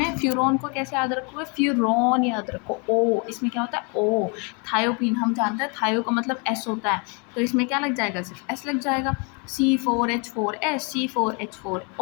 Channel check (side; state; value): right; quieter; 33.8 dB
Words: फ्यूरॉन को कैसे याद रखोगे? फ्यूरॉन याद रखो। ओ, इसमें क्या होता है? ओ। थायोपीन हम जानते हैं, थायो का मतलब S होता है, तो इसमें क्या लग जाएगा? सिर्फ S लग जाएगा। C4H4S,